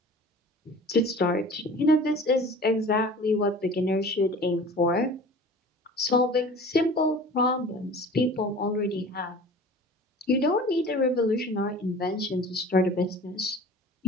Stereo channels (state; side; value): normal; both; correlation 0.42